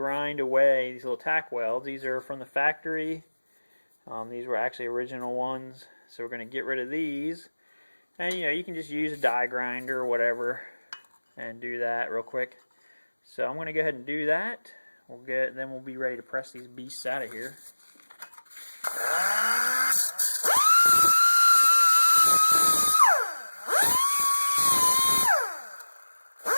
away these little tack welds. These are from the factory. These were actually original ones, so we're going to get rid of these. And you can just use a die grinder or whatever and do that real quick. So I'm going to go ahead and do that. Then we'll be ready to press these beasts out of here.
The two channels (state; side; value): inverted; both; correlation -1.00